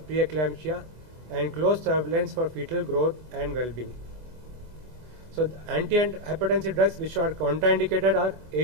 preeclampsia and close surveillance for fetal growth and well-being. So antihypertensive drugs which are contraindicated are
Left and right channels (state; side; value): late; left; 24 ms